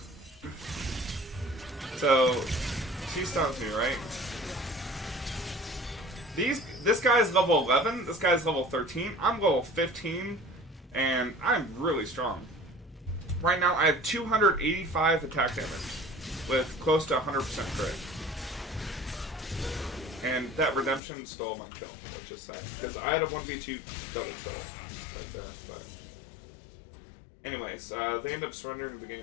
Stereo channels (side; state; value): right; drops out; at 21.0 s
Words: So, she stuns me, right? This guy's level 11, this guy's level 13, I'm level 15, and I'm really strong. Right now, I have 285 attack damage, with close to 100% crit. And that redemption stole my kill, which is sad, because I had a 1v2 double kill right there, but... Anyways, they end up surrendering the